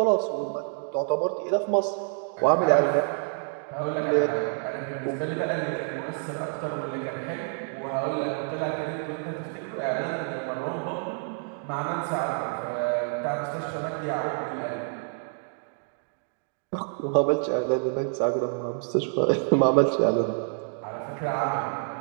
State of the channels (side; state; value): left; silent; 60 dB below the other